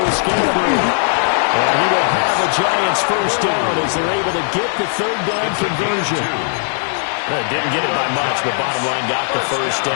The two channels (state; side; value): silent; right; digital silence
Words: with Scatterboo. And he will have the Giants first down as they're able to get the 3rd down conversion. Didn't get it by much, but bottom line got the first